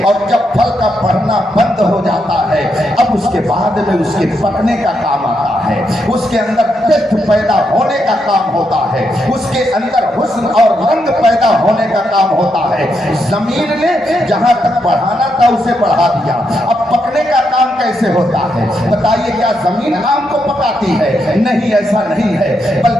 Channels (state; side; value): normal; both; correlation 0.81